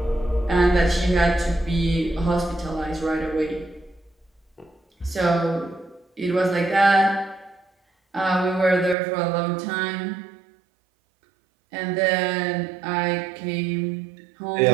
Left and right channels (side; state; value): left; drops out; at 9.0 s